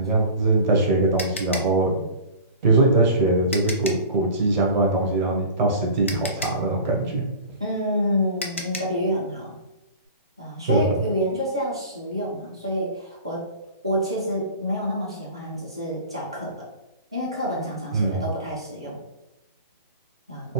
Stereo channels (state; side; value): inverted; both; correlation -0.38